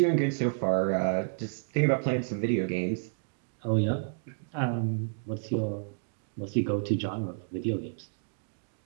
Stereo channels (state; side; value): silent; left; digital silence